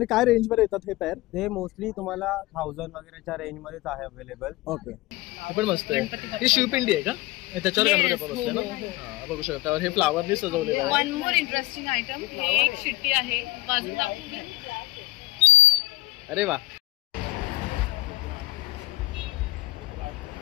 काय रेंज मध्ये येतात हे पेअर? ते मोस्टली तुम्हाला 1000 वगैरेच्या रेंज मध्येच आहे अवेलेबल. ओके, हे पण मस्त आहे. ही शिवपिंडी आहे का? त्याच्यावर गणपती बाप्पा बसले ना. हां, बघू शकता. हे फ्लावरनी सजवलेलं आहे. वन मोर इंटरेस्टिंग आयटम, हे एक शिट्टी आहे, बाजूला दाखवू. अरे वा,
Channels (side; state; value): right; quieter; 18.7 dB